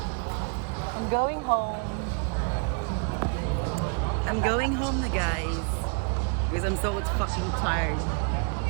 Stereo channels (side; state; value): left; quieter; 38.4 dB